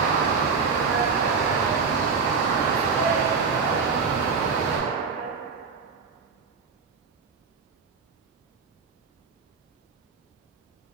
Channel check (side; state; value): left; quieter; 5.3 dB